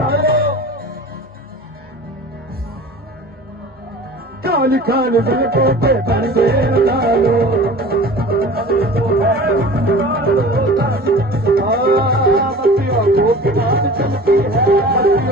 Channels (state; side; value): normal; both; correlation 0.40